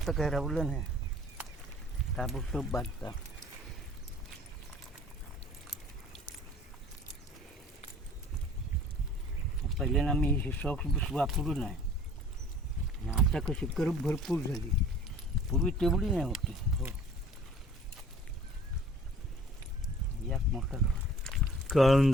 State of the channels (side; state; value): both; normal; correlation 0.52